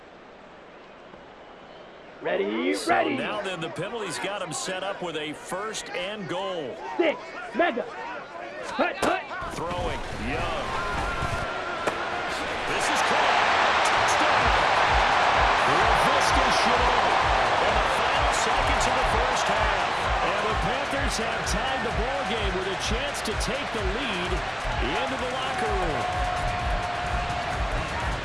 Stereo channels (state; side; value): identical; both; correlation 1.00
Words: Ready, So ready. now then the penalty's got him set up with a 1st and goal. 6, mega. Hut, hut. Throwing, Young. This is caught. Touchdown. Laviska Shenault. In the final seconds of the first half. And the Panthers have tied the ball game with a chance to take the lead into the locker room.